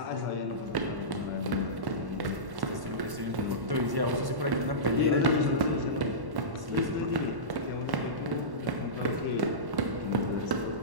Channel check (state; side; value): late; left; 1.1 ms